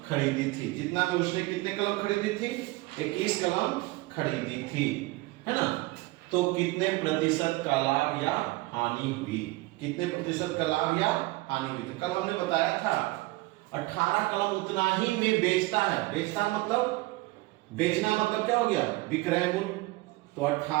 खरीदी थी। जितना में उसने कितने कलम खरीदी थी? 21 कलम खरीदी थी, है ना। तो कितने प्रतिशत का लाभ या हानि हुई? कितने प्रतिशत का लाभ या हानि हुई थी? कल हमने बताया था 18 कलम उतना ही में बेचता है। बेचता मतलब, बेचना मतलब क्या हो गया? विक्रय मूल्य। तो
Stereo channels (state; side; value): quieter; left; 21.4 dB